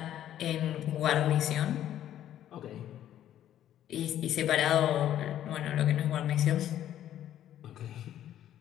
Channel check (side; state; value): right; quieter; 11.6 dB